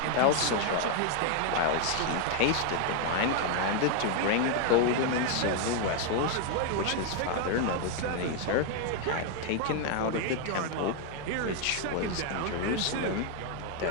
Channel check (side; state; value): both; different; correlation 0.00